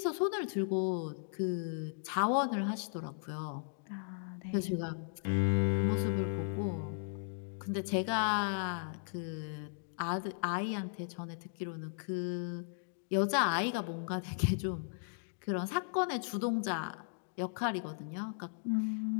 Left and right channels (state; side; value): silent; right; digital silence